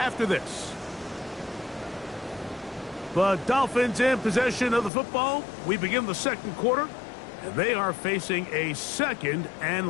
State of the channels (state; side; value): drops out; right; at 4.9 s